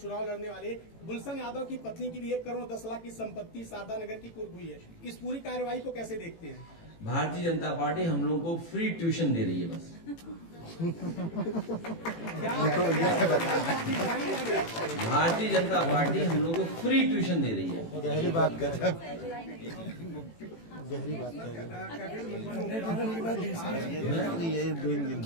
लड़ने वाले गुलशन यादव की पत्नी की भी 1 करोड़ 10 लाख की संपत्ति शारदा नगर की कुर्क हुई है। इस पूरी कार्रवाई को कैसे देखते हैं? भारतीय जनता पार्टी हम लोगों को फ्री ट्यूशन दे रही है बस। भारतीय जनता पार्टी हम लोगों को फ्री ट्यूशन दे रही है। गहरी बात कर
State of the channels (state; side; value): late; right; 18 ms